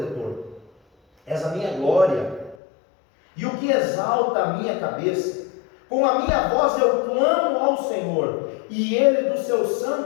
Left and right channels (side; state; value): right; drops out; at 2.6 s